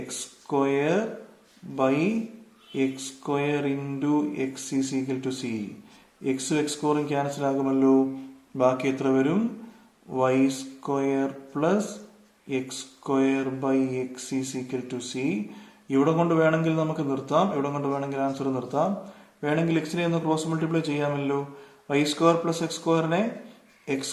square by x square into x is equal to c. എക്സും x സ്ക്വയറും cancel ആകുമല്ലോ. ബാക്കി എത്ര വരും? Y square plus x square by x is equal to c. ഇവിടെ കൊണ്ട് വേണമെങ്കിൽ നമുക്ക് നിർത്താം, ഇവിടെ കൊണ്ട് വേണമെങ്കിൽ ആൻസർ നിർത്താം. വേണമെങ്കിൽ എക്സിനെ ഒന്ന് ക്രോസ് മൾട്ടിപ്ലൈ ചെയ്യാമല്ലോ. വൈ സ്ക്വയർ പ്ലസ് എക്സ് സ്ക്വയറിനെ x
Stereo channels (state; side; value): identical; both; correlation 1.00